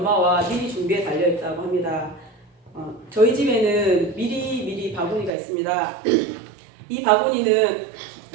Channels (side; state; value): left; drops out; at 5.3 s